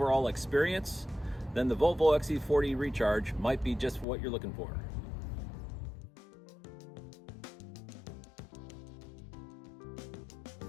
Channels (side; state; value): right; drops out; at 4.0 s